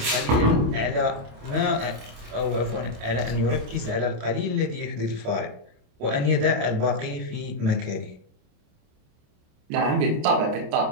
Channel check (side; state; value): left; late; 27 ms